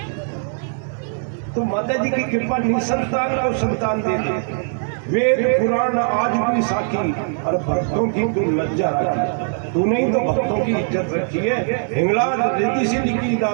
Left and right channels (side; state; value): left; silent; 65 dB below the other